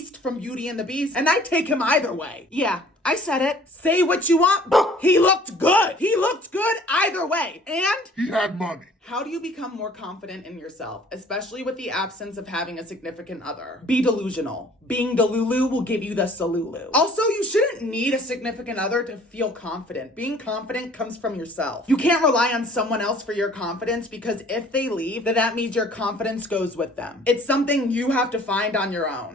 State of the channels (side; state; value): both; normal; correlation 0.53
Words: from Beauty and the Beast, and I'd take him either way. Yeah, I said it. Say what you want. He looked good. He looked good either way. And He had money. how do you become more confident in yourself, especially with the absence of having a significant other? Be delusional. Being Delulu will give you the Salulu. Also, you shouldn't need a significant other to feel confident. Being confident comes from yourself. You can't rely on someone else for your confidence because if they leave, then that means your confidence goes with them. It's something you have to find on your